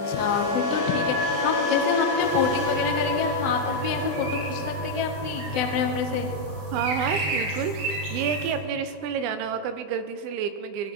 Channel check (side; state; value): left; late; 20 ms